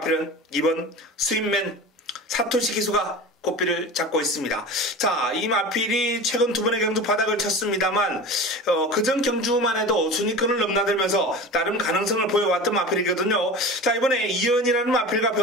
이번 스윗맨 사토시 기수가 꽃비를 잡고 있습니다. 자, 이 마필이 최근 두 번의 경주 바닥을 쳤습니다만 그전 경주만 해도 순위권을 넘나들면서 나름 가능성을 보여왔던 마필이거든요. 자, 이번에 이연이라는 마필과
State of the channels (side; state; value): both; normal; correlation 0.34